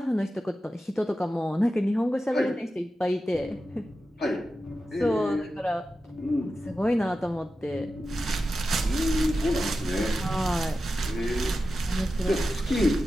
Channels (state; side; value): normal; both; correlation 0.92